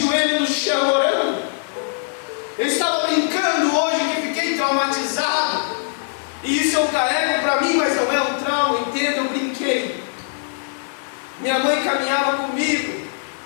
no chão orando. Eu estava brincando hoje que fiquei traumatizado. E isso eu carrego para mim, mas não é um trauma, entenda, eu brinquei. Minha mãe caminhava comigo,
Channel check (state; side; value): silent; right; 65 dB below the other